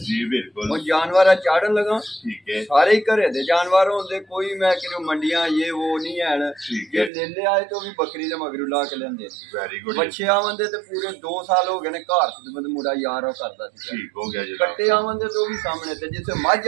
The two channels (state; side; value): drops out; left; at 7.1 s